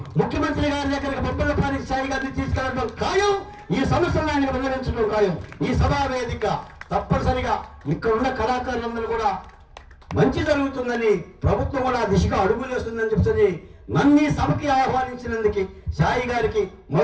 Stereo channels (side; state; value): both; identical; correlation 1.00